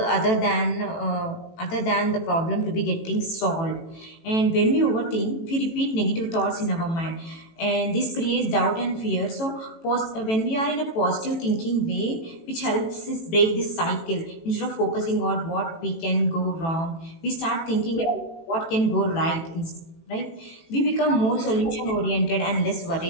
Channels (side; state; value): right; late; 18 ms